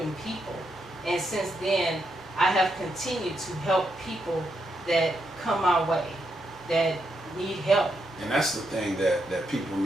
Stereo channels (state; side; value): normal; both; correlation 0.81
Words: people. And since then, I have continued to help people that come my way, that need help. And that's the thing that people